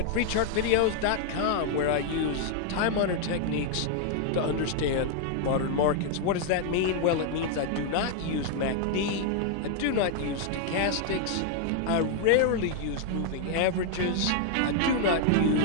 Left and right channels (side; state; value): both; different; correlation 0.00